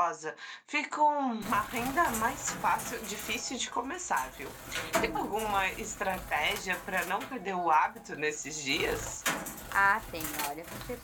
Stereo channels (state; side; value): identical; both; correlation 1.00